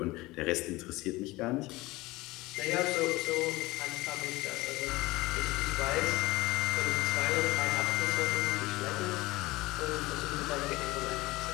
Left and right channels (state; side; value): quieter; right; 20.4 dB